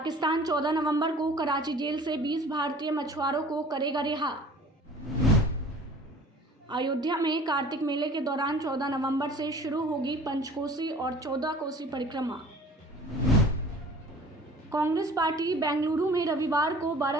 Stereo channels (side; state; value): both; normal; correlation 0.47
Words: 14 नवंबर को कराची जेल से 20 भारतीय मछुआरों को करेगा रिहा। अयोध्या में कार्तिक मेले के दौरान 14 नवंबर से शुरू होगी पंचकोसी और 14 कोसी परिक्रमा। कांग्रेस पार्टी बेंगलुरु में रविवार को